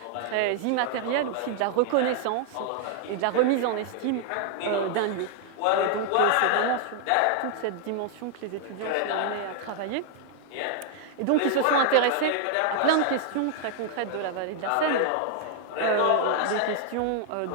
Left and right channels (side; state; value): both; different; correlation 0.00